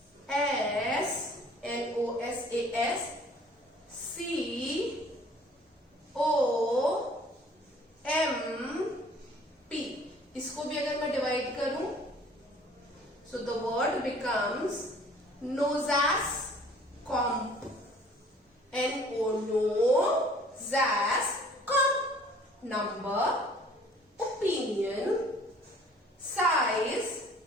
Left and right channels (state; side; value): normal; both; correlation 0.53